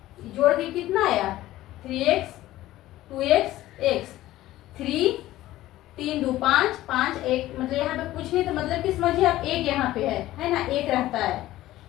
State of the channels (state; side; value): quieter; right; 15.4 dB